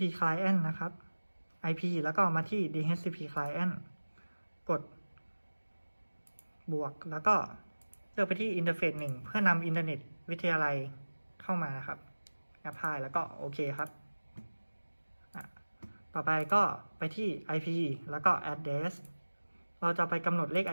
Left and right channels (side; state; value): both; inverted; correlation -1.00